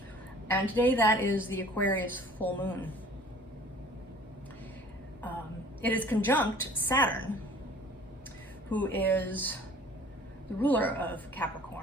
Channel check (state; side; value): normal; both; correlation 0.50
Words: And today that is the Aquarius full moon. It is conjunct Saturn, who is the ruler of